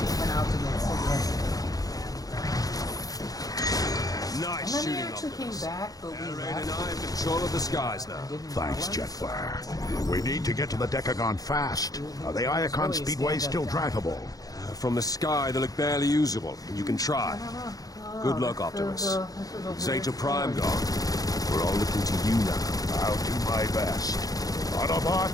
actually came back, but we Rain left. and I have control of the skies now. Didn't Thanks, know it. Jetfire. We need to get to the Decagon fast. Are the Iacon Speedway still drivable? From the sky, they look barely usable. You can try. Good luck, Optimus. Zeta Prime gone. We're all looking to you now. I'll do my best.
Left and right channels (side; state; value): right; late; 0.18 ms